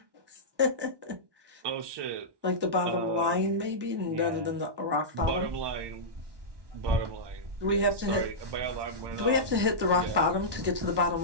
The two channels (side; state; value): left; late; 1.2 ms